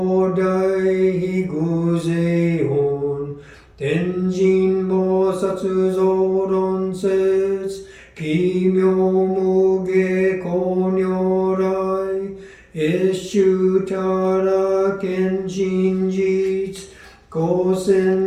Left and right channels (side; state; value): both; identical; correlation 1.00